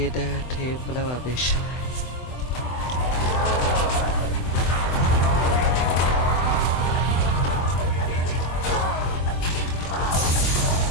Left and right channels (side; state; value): right; late; 24 ms